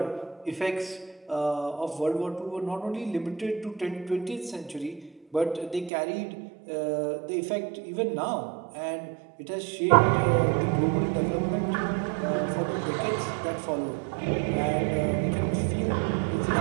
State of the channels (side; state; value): left; drops out; at 5.9 s